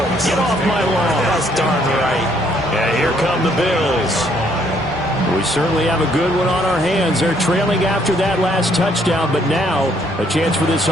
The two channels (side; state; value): both; normal; correlation 0.67